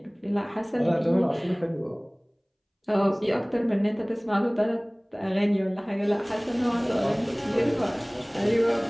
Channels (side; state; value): both; identical; correlation 1.00